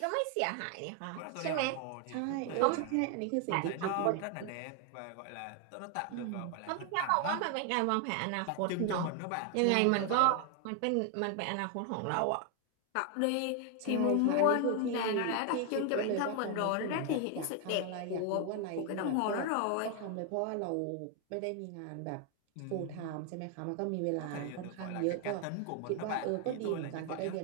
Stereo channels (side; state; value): both; different; correlation 0.00